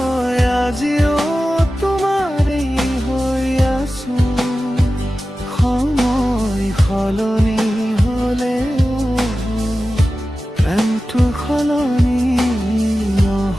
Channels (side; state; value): both; normal; correlation 0.94